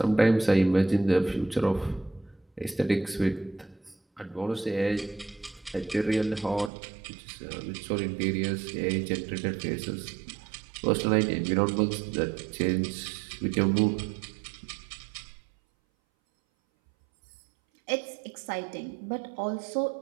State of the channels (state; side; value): drops out; left; at 6.7 s